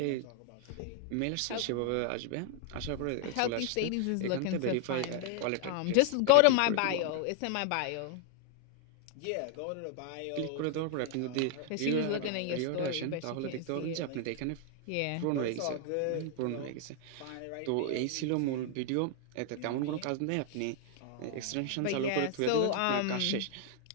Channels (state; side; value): different; both; correlation 0.00